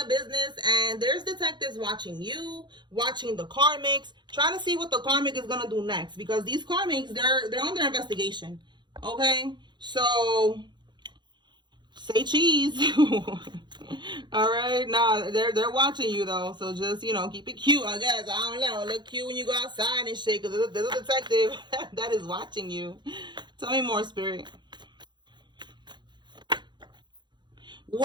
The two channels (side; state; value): left; late; 0.22 ms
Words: business and there's detectives watching you, watching the karmics, trying to see what the karmic is going to do next. Because these karmics, they're under investigation. Okay? So say cheese. All right, nah, they're watching you though, so just keep it cute. I guess I don't know, look cute when you go outside and shit, because there's a detective that is watching you. Tell me more, Spirit.